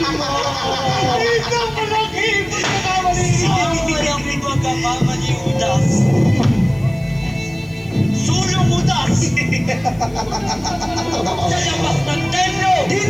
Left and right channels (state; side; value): noise; left; hiss, 28 dB below the sound